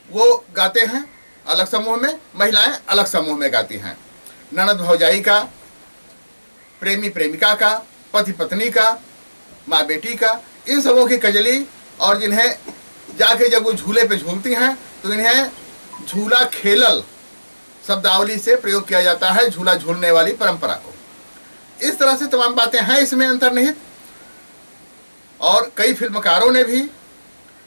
वो गाते हैं अलग समूह में, महिलाएं अलग समूह में गाती हैं। ननद भौजाई का, प्रेमी प्रेमिका का, पति पत्नी का, माँ बेटी का, इन सबों की कजली। और जिन्हें जाके जब वो झूले पे झूलती हैं तो इन्हें झूला खेलल शब्दावली से प्रयोग किया जाता है, झूला झूलने वाली परंपरा को। इस तरह से तमाम बातें हैं इसमें अंतर्निहित। और कई फिल्मकारों ने भी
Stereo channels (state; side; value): inverted; both; correlation -1.00